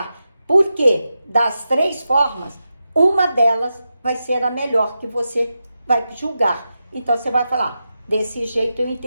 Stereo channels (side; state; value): both; inverted; correlation -0.90